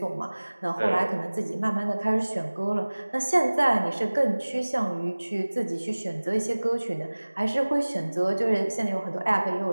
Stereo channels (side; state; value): both; inverted; correlation -1.00